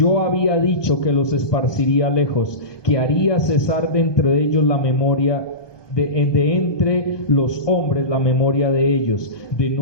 había dicho que los esparciría lejos, que haría cesar de entre ellos la memoria de entre los hombres la memoria de ellos, de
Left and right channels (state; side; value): late; right; 1.2 ms